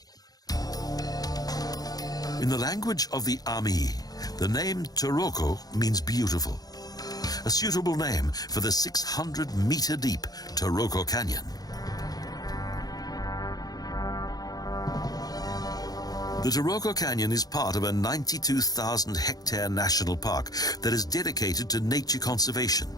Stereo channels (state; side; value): late; right; 0.19 ms